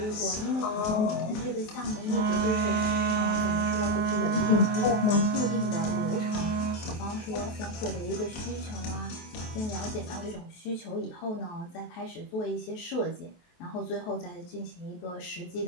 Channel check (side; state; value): right; late; 23 ms